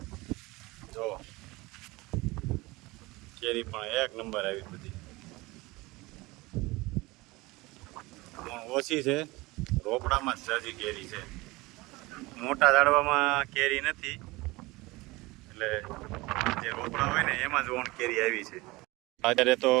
જો કેરી પણ એક નંબર આવી બધી. પણ ઓછી છે, રોપડામાં જ જાજી કેરી છે. મોટા ઝાડવામાં કેરી નથી, એટલે જે રોપડા હોય ને એમાં જ ઓણ કેરી આવી છે. અત્યારે તો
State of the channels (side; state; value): left; quieter; 22.0 dB